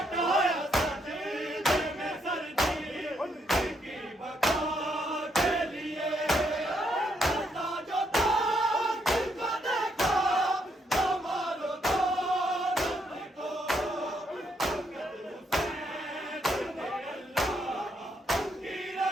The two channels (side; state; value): both; normal; correlation 0.75